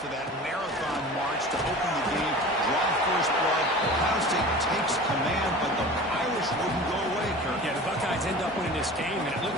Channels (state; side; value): normal; both; correlation 0.38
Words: to that marathon march to open the game, draw first blood. Ohio State takes command, but the Irish wouldn't go away, Kirk. Yeah, the Buckeyes end up winning this game, and it